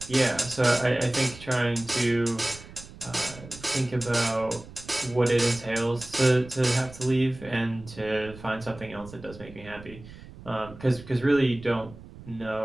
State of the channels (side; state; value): right; noise; rumble, 17 dB below the sound